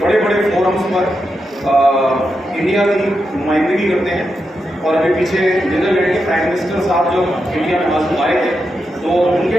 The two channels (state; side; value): normal; both; correlation 0.86